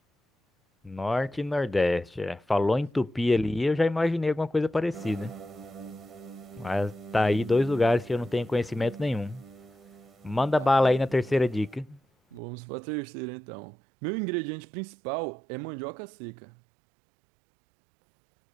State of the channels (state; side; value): drops out; left; at 12.4 s